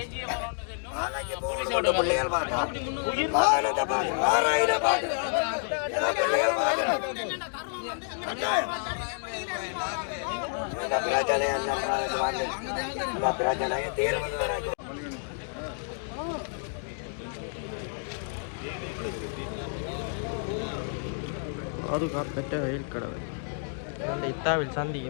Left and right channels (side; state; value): right; silent; 58 dB below the other